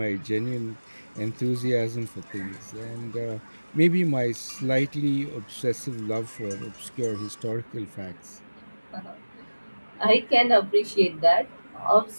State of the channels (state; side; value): inverted; both; correlation -1.00